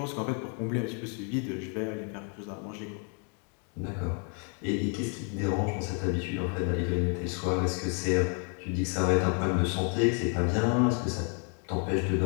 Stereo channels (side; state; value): right; quieter; 39.4 dB